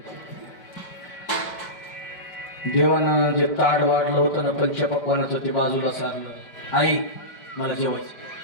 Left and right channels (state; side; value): late; right; 5.1 ms